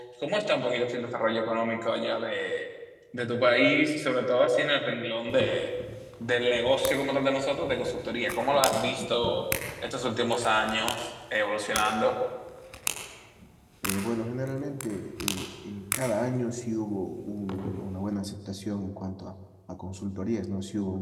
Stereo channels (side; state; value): both; identical; correlation 1.00